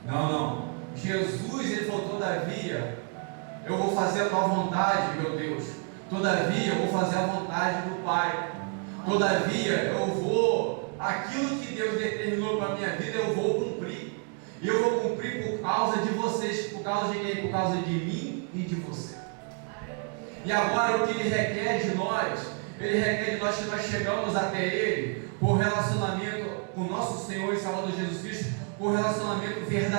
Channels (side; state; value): left; quieter; 37.9 dB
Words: Não. Jesus, Ele falou: todavia, eu vou fazer a tua vontade, meu Deus. Todavia, eu vou fazer a vontade do Pai. Todavia, eu vou, aquilo que Deus determinou para a minha vida, eu vou cumprir. E eu vou cumprir por causa de vocês. Por causa de quem? Por causa de mim e de você. E agora o que Ele requer de nós? Ele requer de nós que nós chegamos até Ele por relacionamento com nosso Senhor e Salvador Jesus Cristo, com relacionamento